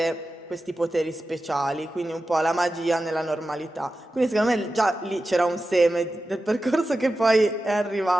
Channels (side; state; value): both; normal; correlation 0.93